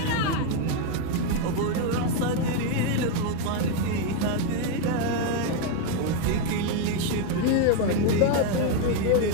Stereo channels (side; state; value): both; different; correlation 0.01